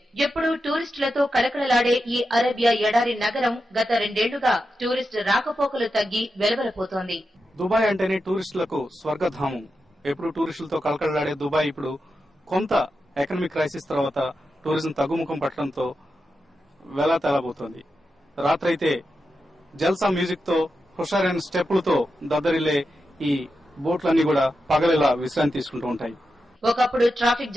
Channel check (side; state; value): both; normal; correlation 0.89